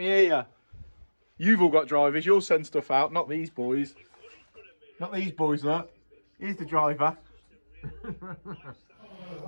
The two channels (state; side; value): inverted; both; correlation -1.00